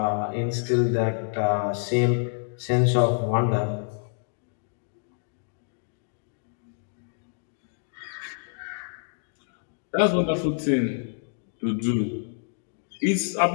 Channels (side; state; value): right; silent; digital silence